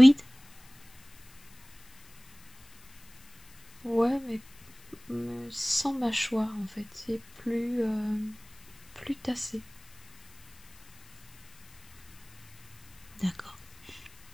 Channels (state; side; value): noise; left; hiss, 27 dB below the sound